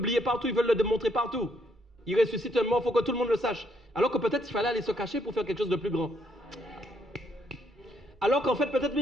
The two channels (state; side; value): normal; both; correlation 0.72